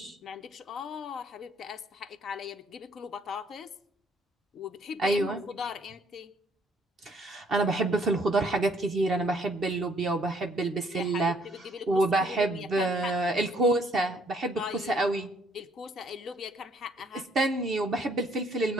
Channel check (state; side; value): normal; both; correlation 0.64